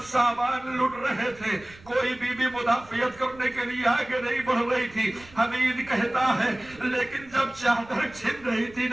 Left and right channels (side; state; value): right; noise; rumble, 22 dB below the sound